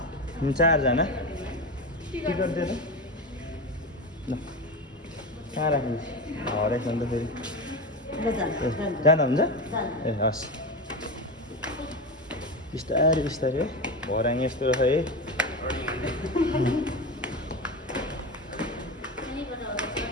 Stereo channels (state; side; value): normal; both; correlation 0.21